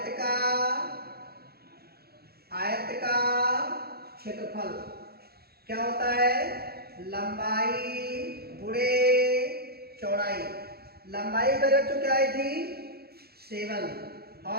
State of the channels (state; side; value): late; left; 0.46 ms